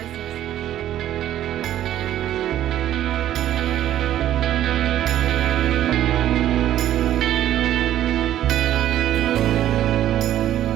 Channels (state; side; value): quieter; left; 12.1 dB